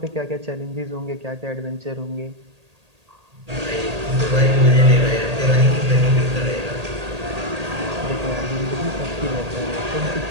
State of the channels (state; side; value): late; left; 1.8 ms